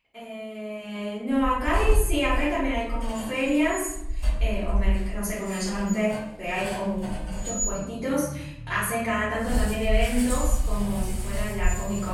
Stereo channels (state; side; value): identical; both; correlation 1.00